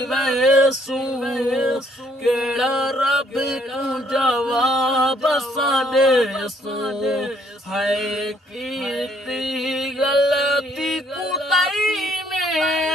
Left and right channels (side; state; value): both; normal; correlation 0.67